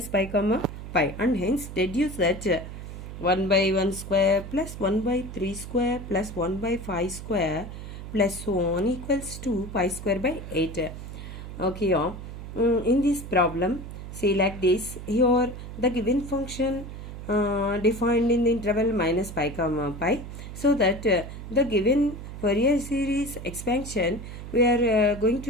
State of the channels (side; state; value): right; noise; hum, 10 dB below the sound